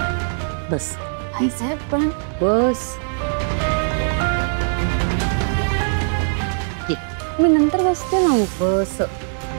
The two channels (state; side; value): silent; left; digital silence